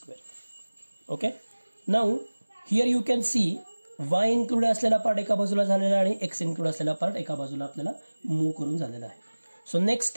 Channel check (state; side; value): inverted; both; correlation -1.00